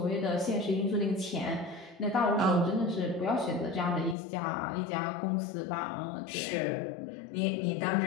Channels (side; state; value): right; drops out; at 4.2 s